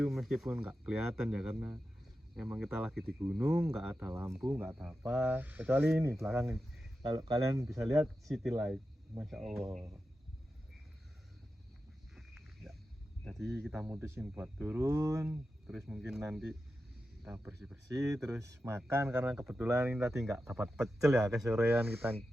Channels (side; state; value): both; normal; correlation 0.91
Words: meskipun nggak kelihatan ya karena emang kita lagi di gunung, nggak ada lampu, nggak ada apa, kecuali ini belakang ini. Kalau kalian bisa lihat city light, masya Allah ya. Jadi kita mutusin buat turun, terus mungkin nanti kita bersih-bersih, terus makan karena kebetulan ini tadi nggak dapat pecel ya, kesorean kita